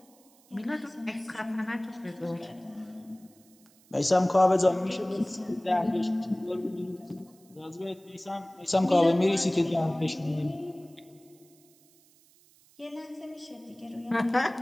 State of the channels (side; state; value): right; noise; hiss, 29 dB below the sound